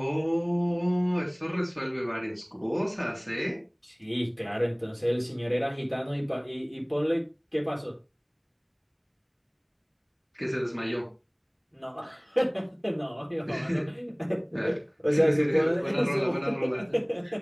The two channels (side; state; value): both; identical; correlation 1.00